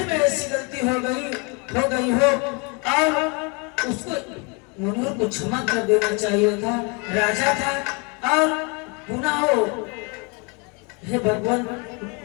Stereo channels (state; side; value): quieter; right; 32.1 dB